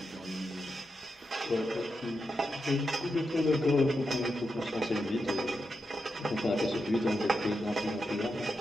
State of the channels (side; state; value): both; normal; correlation 0.87